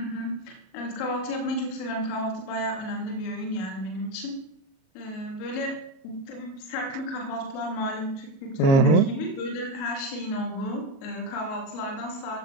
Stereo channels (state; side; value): late; right; 37 ms